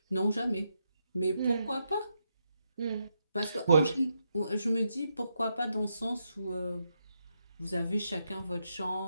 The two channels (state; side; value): inverted; both; correlation -0.82